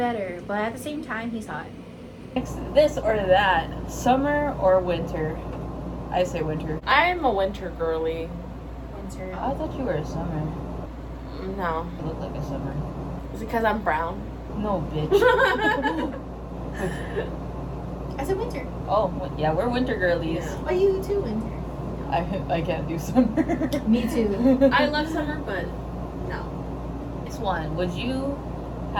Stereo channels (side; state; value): both; identical; correlation 1.00